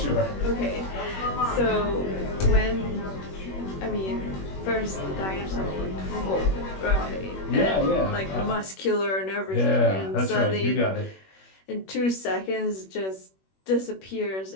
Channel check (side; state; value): right; late; 21 ms